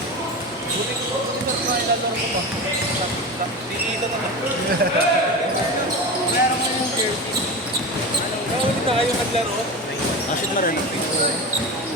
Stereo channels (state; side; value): normal; both; correlation 0.25